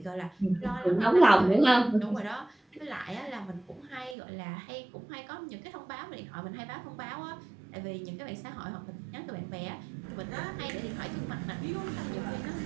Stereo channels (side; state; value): left; drops out; at 4.2 s